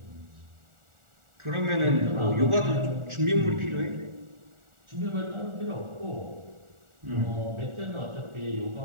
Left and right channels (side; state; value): left; late; 1.4 ms